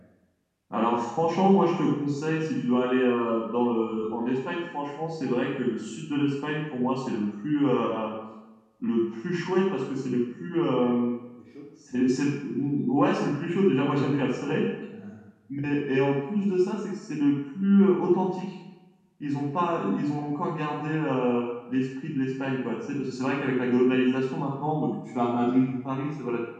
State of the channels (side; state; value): both; identical; correlation 1.00